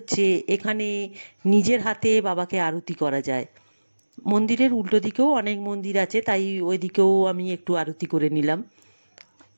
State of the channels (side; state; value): both; inverted; correlation -1.00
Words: এখানে নিজের হাতে বাবাকে আরতি করা যায়। মন্দিরের উল্টো দিকেও অনেক মন্দির আছে, তাই ওই দিকেও আমি একটু আরতি করে নিলাম।